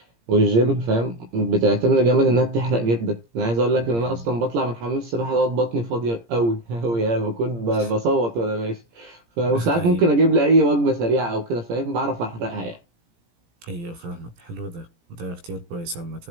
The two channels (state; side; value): late; left; 17 ms